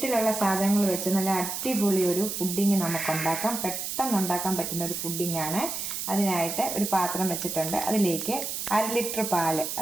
സാധനങ്ങൾ വെച്ച് നല്ല അടിപൊളി ഒരു പുഡിംഗ് നമുക്ക് ഉണ്ടാക്കാം. പെട്ടെന്ന് ഉണ്ടാക്കാൻ പറ്റുന്ന ഒരു പുഡിംഗ് ആണ്. അതിനായിട്ട് ഒരു പാത്രം വെച്ചിട്ടുണ്ട്. അതിലേക്ക് 1 ലിറ്റർ പാല്,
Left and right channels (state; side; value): noise; right; hiss, 4 dB below the sound